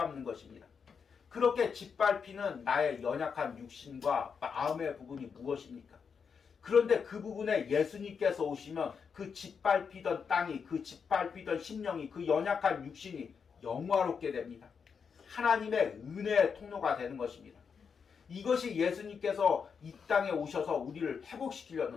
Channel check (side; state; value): right; quieter; 6.2 dB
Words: 것입니다. 그렇게 짓밟히는 나의 연약한 육신과 마음의 부분이 무엇입니까? 그런데 그 부분에 예수님께서 오시면 그 짓밟히던 땅이, 그 짓밟히던 심령이, 그 연약한 육신이 영화롭게 됩니다. 하나님의 은혜의 통로가 되는 것입니다. 이것이 예수님께서 이 땅에 오셔서 우리를